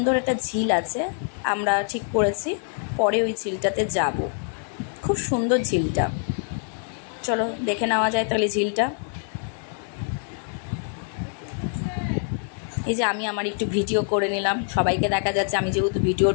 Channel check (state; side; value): silent; right; 62 dB below the other